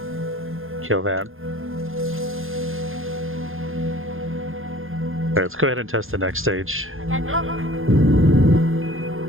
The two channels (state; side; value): late; left; 0.60 ms